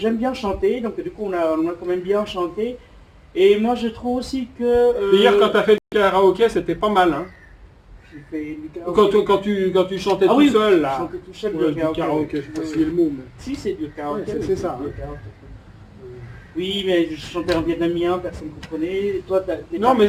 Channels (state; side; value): identical; both; correlation 1.00